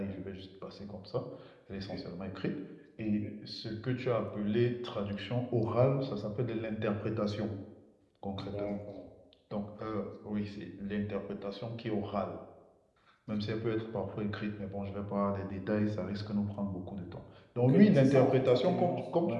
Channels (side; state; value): both; identical; correlation 1.00